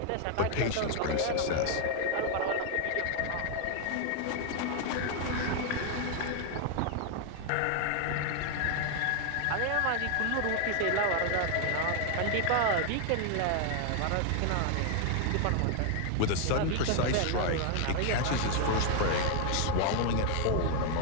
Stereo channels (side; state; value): both; different; correlation 0.00